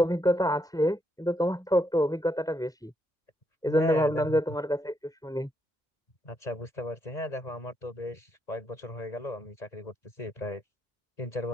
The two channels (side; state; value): both; normal; correlation 0.78